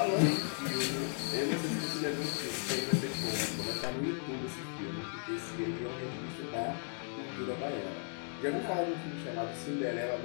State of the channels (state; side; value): silent; right; 54 dB below the other